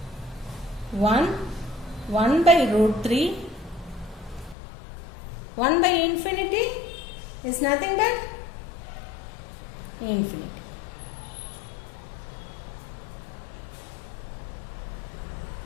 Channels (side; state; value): right; drops out; at 4.5 s